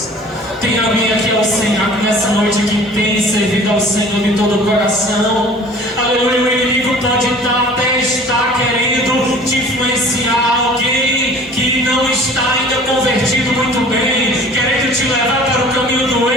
Tem alguém aqui ao Senhor nessa noite que tem servido ao Senhor de todo o coração? Aleluia. O inimigo pode até estar querendo te influenciar, alguém que não está ainda convertido muito bem, querendo te levar para o caminho do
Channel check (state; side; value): normal; both; correlation 0.47